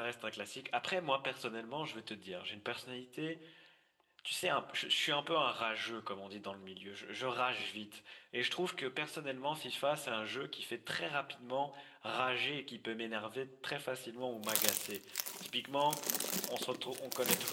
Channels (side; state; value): both; identical; correlation 1.00